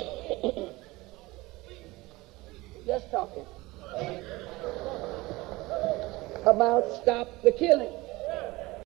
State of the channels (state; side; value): quieter; left; 20.9 dB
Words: Just talking about stop the killing.